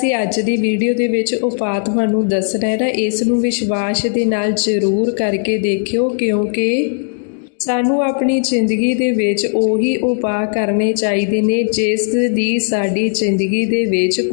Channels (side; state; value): right; silent; digital silence